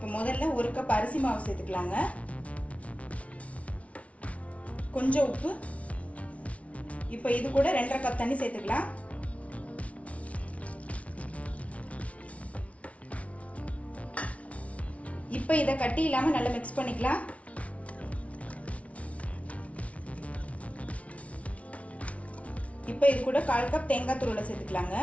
முதல்ல ஒரு கப் அரிசி மாவு சேர்த்துக்கலாங்க. கொஞ்சம் உப்பு. இப்போ இது கூட 2.5 கப் தண்ணி சேர்த்துக்கலாம். இப்போ இதை கட்டி இல்லாமல் நல்லா மிக்ஸ் பண்ணிக்கலாம். இப்போ இது கூட 1/4 கப் தேங்காய் துருவலை சேர்த்துக்கலாங்க.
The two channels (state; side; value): late; right; 0.065 ms